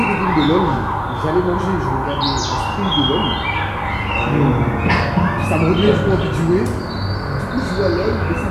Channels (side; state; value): both; identical; correlation 1.00